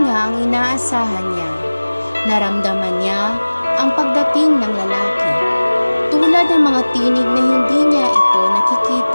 nga ang inaasahan niya. Naramdaman niya ang pagdating ng lalaki. Tulad ng mga tinig na hindi niya ito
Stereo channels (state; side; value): inverted; both; correlation -1.00